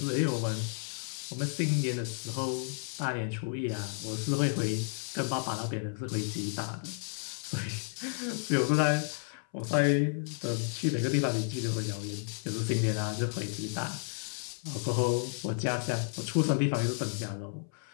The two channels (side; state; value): right; silent; 56 dB below the other